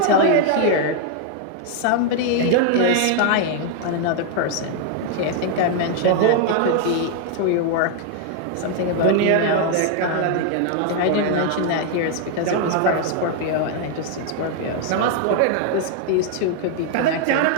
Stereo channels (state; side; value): different; both; correlation 0.00